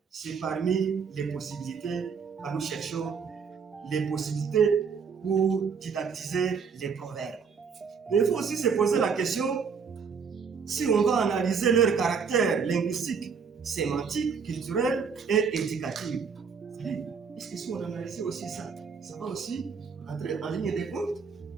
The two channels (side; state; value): left; quieter; 6.0 dB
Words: C'est parmi les possibilités que nous cherchons, les possibilités pour didactiser les proverbes. Mais il faut aussi se poser la question si on va analyser leur caractère linguistique, sémantique, culturel et éducatif. Est-ce que si on analyse aussi ça, ça va aussi entrer en ligne de compte?